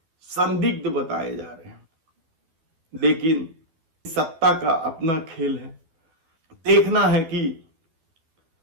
संदिग्ध बताए जा रहे हैं। लेकिन सत्ता का अपना खेल है। देखना है कि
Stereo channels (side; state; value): left; late; 12 ms